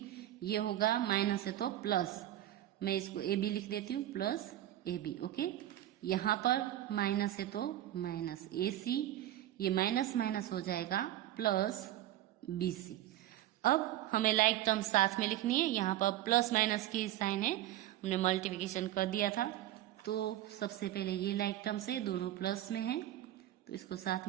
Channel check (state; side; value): quieter; left; 13.6 dB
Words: ये होगा माइनस है तो प्लस, मैं इसको AB लिख देती हूँ, प्लस AB। ओके, यहाँ पर माइनस है तो माइनस AC, ये माइनस माइनस हो जाएगा प्लस BC। अब हमें लाइक टर्म साथ में लिखनी है। यहाँ पर प्लस माइनस की साइन है, हमने मल्टीप्लिकेशन कर दिया था, तो सबसे पहले ये लाइक टर्म से दोनों प्लस में है, तो इसको साथ